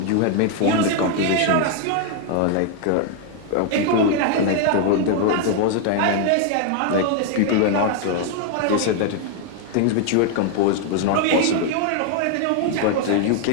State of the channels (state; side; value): different; both; correlation 0.00